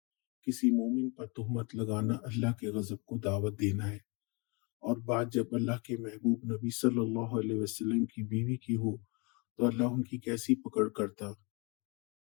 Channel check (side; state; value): right; quieter; 30.3 dB